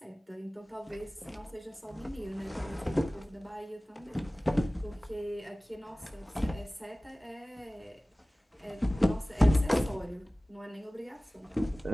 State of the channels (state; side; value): normal; both; correlation 0.98